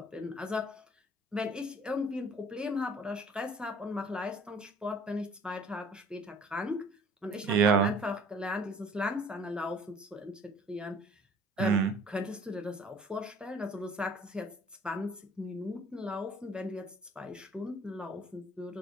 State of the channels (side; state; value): both; normal; correlation 0.52